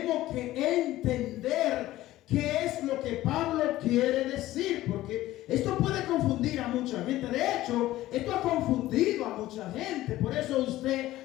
que entender qué es lo que Pablo quiere decir, porque esto puede confundir a mucha gente. De hecho, esto ha confundido a mucha gente. Por eso usted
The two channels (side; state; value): right; quieter; 15.7 dB